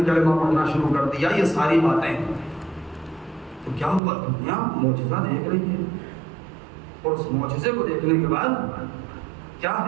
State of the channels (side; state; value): left; drops out; at 4.0 s